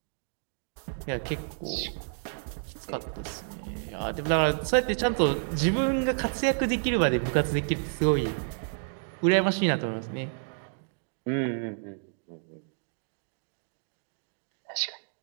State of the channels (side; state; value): left; silent; digital silence